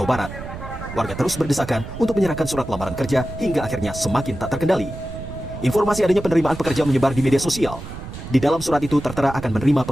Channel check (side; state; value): right; noise; rumble, 11 dB below the sound